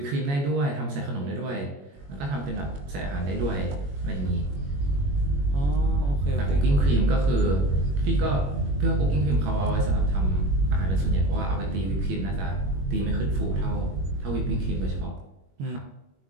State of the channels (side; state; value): left; late; 21 ms